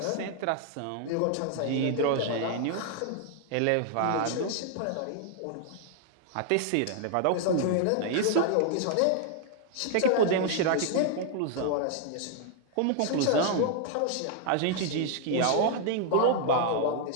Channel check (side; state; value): both; different; correlation 0.00